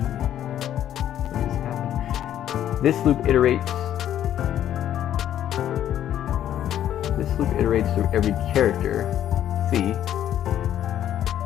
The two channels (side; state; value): right; quieter; 11.1 dB